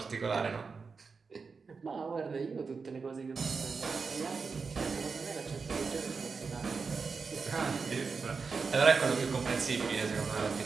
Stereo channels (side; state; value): left; quieter; 4.9 dB